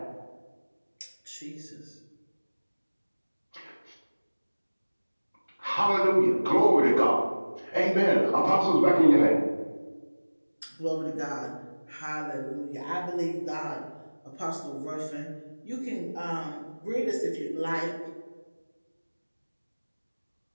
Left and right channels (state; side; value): inverted; both; correlation -1.00